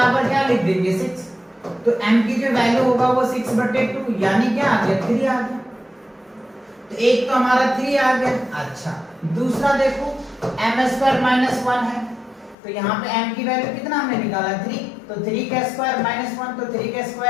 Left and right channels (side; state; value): right; drops out; at 12.6 s